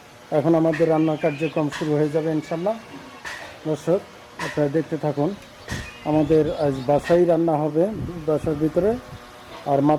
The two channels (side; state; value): both; identical; correlation 1.00